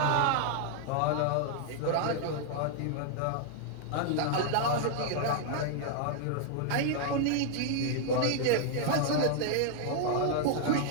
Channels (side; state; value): both; different; correlation 0.00